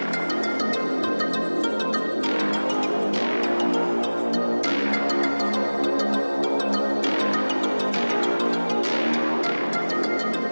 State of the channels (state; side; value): inverted; both; correlation -1.00